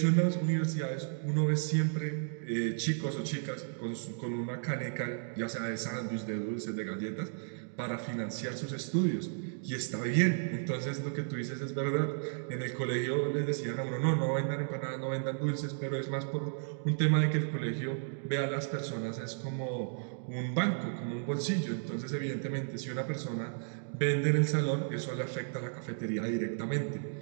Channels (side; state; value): left; silent; digital silence